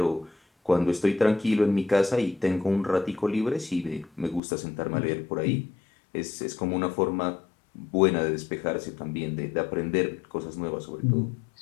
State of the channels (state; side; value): drops out; right; at 4.4 s